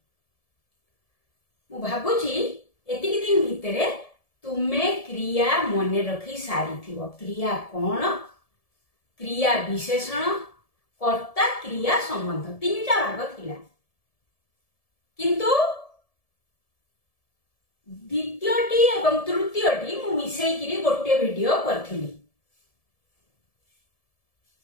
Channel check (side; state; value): right; late; 1.7 ms